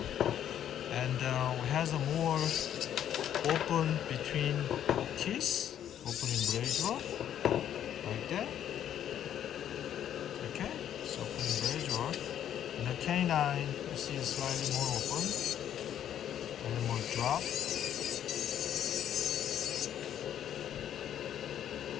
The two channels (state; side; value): quieter; right; 10.3 dB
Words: And it has a more open between teeth, opening braidure, like that. Okay, so opening braidure. And the canine, you see is slightly more open, and more drop.